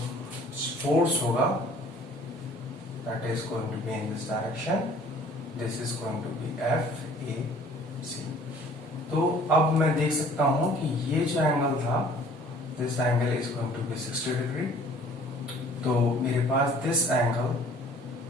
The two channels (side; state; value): both; normal; correlation 0.52